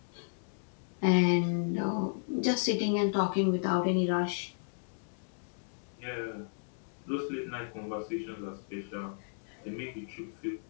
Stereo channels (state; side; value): silent; right; digital silence